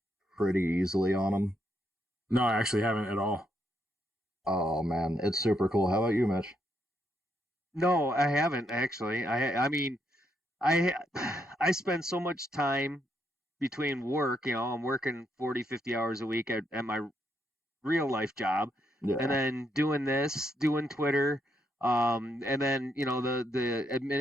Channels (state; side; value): normal; both; correlation 0.77